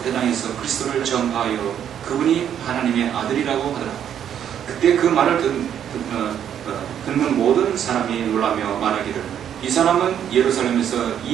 회당에서 그리스도를 전파하여 그분이 하나님의 아들이라고 하더라. 그때 그 말을 듣는 모든 사람이 놀라며 말하기를, 이 사람은 예루살렘에서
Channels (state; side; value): quieter; left; 9.4 dB